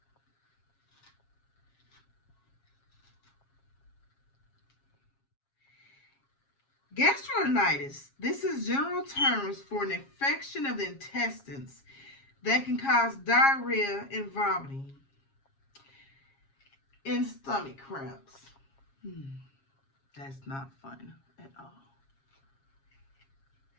Gastroenteritis. This is general terms for an infection of the intestines that can cause diarrhea and vomiting and stomach cramps. That's not fun at all.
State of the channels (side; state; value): right; late; 7.4 ms